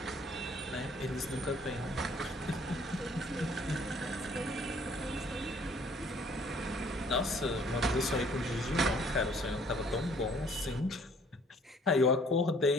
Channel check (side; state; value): both; normal; correlation 0.59